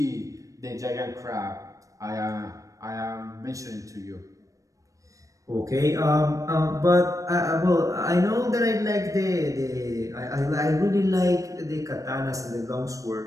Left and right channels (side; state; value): left; late; 0.16 ms